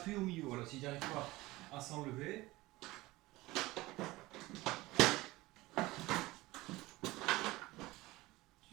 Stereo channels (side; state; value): left; quieter; 19.6 dB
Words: au milieu. Voilà, si tu n'arrives pas à s'enlever.